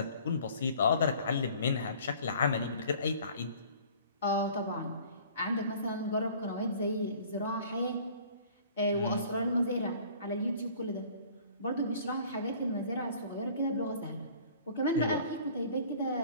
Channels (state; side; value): inverted; both; correlation -0.50